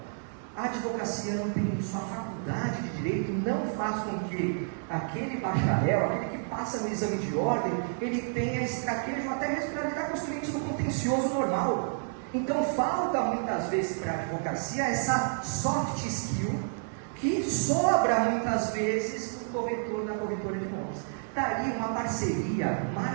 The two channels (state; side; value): silent; left; digital silence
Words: A advocacia não tem isso, a faculdade de direito não faz com que aquele bacharel, aquele que passa no exame de ordem, ele tenha esse traquejo até mesmo para lidar com os clientes do contencioso normal. Então falta muitas vezes para a advocacia essa soft skill que sobra muitas vezes no corretor da corretora de imóveis. Daí uma parceria